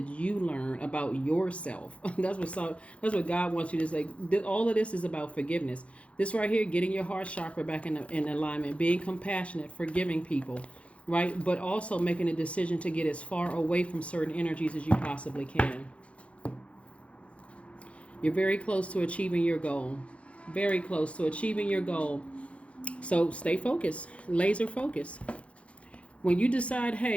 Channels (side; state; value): right; late; 0.062 ms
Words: you learn about yourself? That's what God wants you to say. All of this is about forgiveness. This right here, getting your heart chakra back in alignment, being compassionate, forgiving people, right? But also making a decision to get as far away from certain energies as you possibly can. You're very close to achieving your goal. Very close to achieving your goal. So stay focused, laser focused. When you decide,